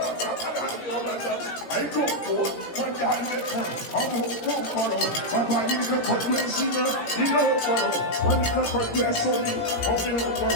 aláàbí ọ̀rẹ́ àìkú òkú wọn jà lẹ́kọ̀ọ́ ọmọ òkú ọ̀kọ̀rọ̀ bàbá yìí kẹ́kọ̀ọ́ tó ń ṣínà iná ọ̀kọ̀rọ̀ wọn ni kẹ́kọ̀ọ́ tó ẹ sọ́ni ọ̀fìn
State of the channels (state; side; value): late; right; 18 ms